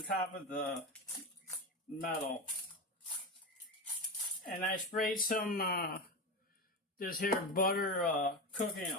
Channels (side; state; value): both; normal; correlation 0.19